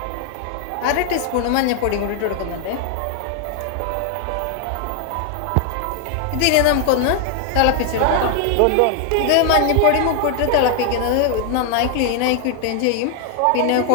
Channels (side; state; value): both; different; correlation 0.00